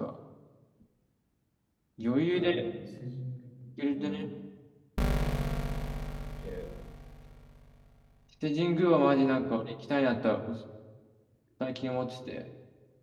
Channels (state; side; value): identical; both; correlation 1.00